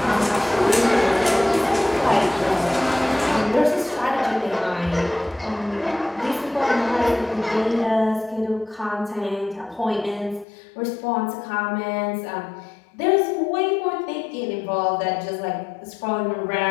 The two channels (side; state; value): right; drops out; at 10.5 s